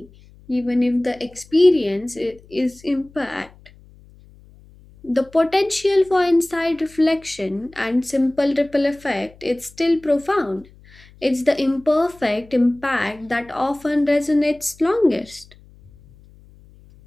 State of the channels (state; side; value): noise; left; hum, 25 dB below the sound